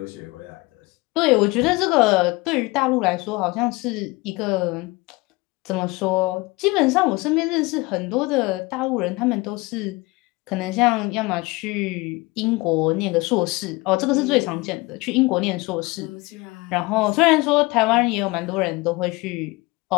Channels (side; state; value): right; quieter; 23.5 dB